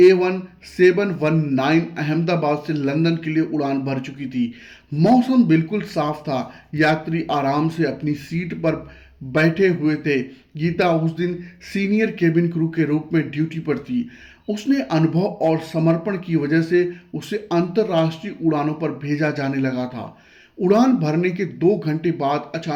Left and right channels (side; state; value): both; identical; correlation 1.00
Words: अहमदाबाद से लंदन के लिए उड़ान भर चुकी थी। मौसम बिल्कुल साफ था, यात्री आराम से अपनी सीट पर बैठे हुए थे। गीता उस दिन सीनियर केबिन क्रू के रूप में ड्यूटी पर थी। उसने अनुभव और समर्पण की वजह से उसे अंतर्राष्ट्रीय उड़ानों पर भेजा जाने लगा था। उड़ान भरने के 2 घंटे बाद